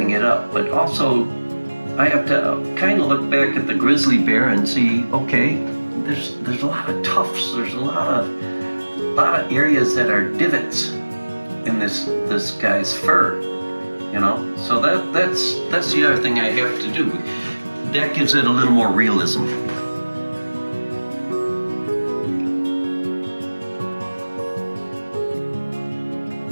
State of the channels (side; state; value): both; inverted; correlation -1.00